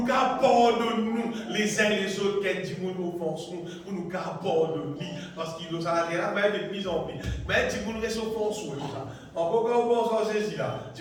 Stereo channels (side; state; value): both; identical; correlation 1.00